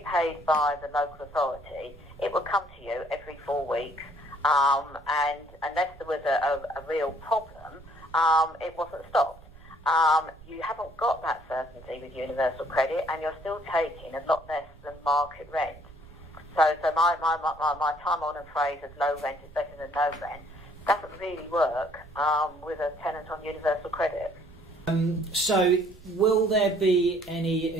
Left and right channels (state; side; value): noise; right; rumble, 21 dB below the sound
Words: paid by the local authority, it would come to you every 4 weeks, and unless there was a real problem, it wasn't stopped. You haven't got that certainty with universal credit, and you're still taking a lot less than market rent. So my time-honoured phrase of low rent is better than no rent doesn't really work with a tenant on universal credit. So will there be any